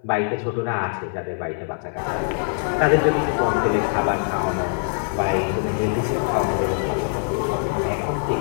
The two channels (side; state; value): right; silent; 63 dB below the other